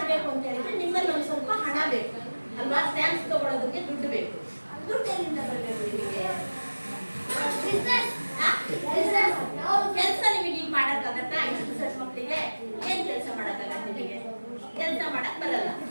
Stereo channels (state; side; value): inverted; both; correlation -1.00